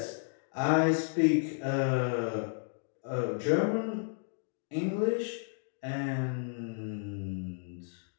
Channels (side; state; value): right; silent; digital silence